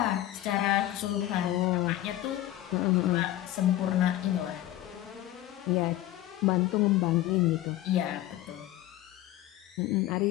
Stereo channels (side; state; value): right; quieter; 14.3 dB